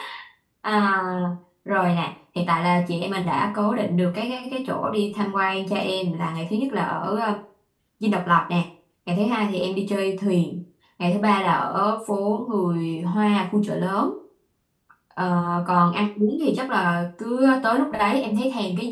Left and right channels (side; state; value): both; identical; correlation 1.00